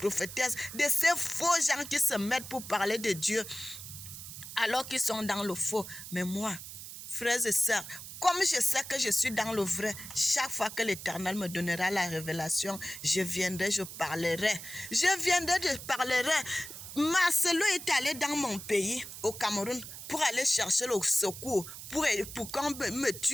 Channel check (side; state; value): right; noise; hiss, 11 dB below the sound